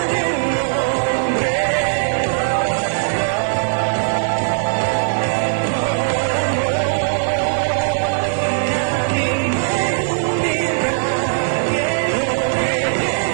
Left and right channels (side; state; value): left; silent; 67 dB below the other